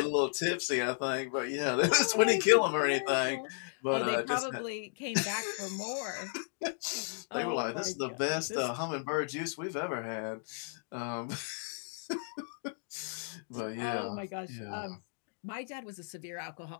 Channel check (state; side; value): silent; right; digital silence